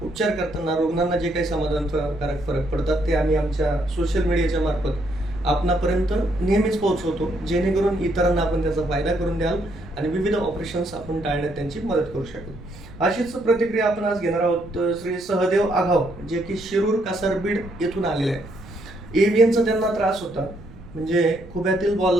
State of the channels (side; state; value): right; noise; rumble, 18 dB below the sound